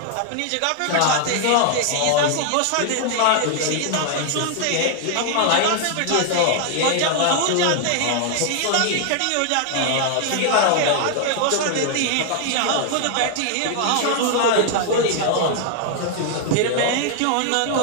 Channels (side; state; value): both; different; correlation 0.00